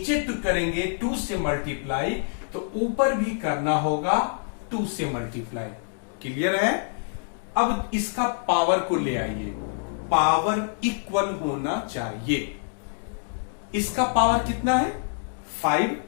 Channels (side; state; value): right; silent; digital silence